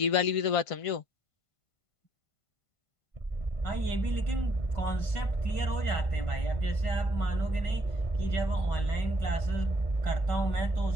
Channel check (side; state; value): right; late; 1.5 ms